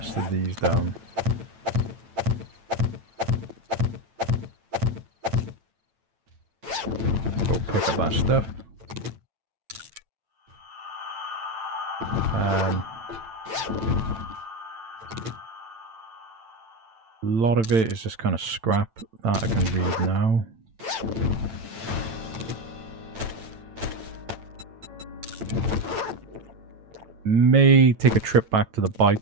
of these down. Go pick up that stuff. A lot of it is just kind of scrap that I can read now. May take a trip back to the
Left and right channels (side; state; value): left; late; 8.9 ms